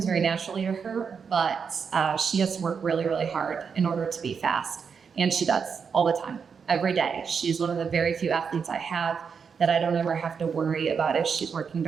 very naturally to her, but she has to work really, really hard in order to be fast. And she does all the time, every day. She's one of the very few athletes I have that I don't ever have to worry about if she's working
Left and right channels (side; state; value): left; quieter; 6.2 dB